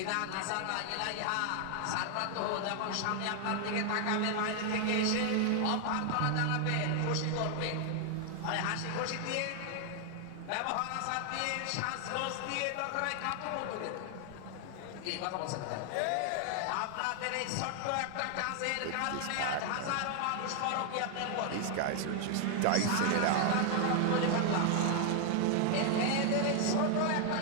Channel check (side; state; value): both; different; correlation 0.00